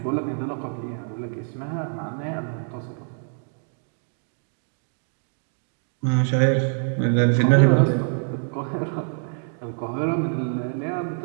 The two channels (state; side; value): silent; left; 57 dB below the other